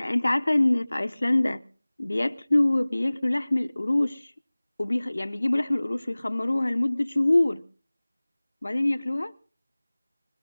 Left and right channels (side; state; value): both; inverted; correlation -1.00